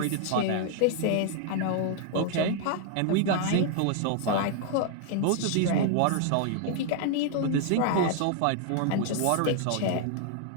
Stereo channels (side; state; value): both; different; correlation 0.00